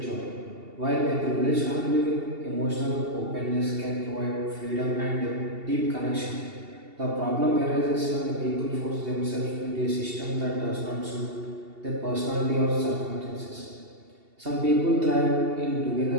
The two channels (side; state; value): left; late; 2.7 ms